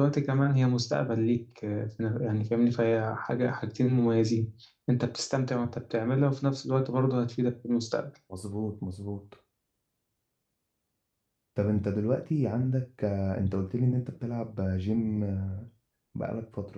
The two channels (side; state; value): both; identical; correlation 1.00